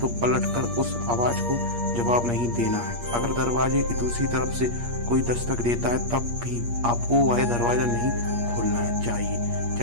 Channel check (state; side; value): late; left; 8.5 ms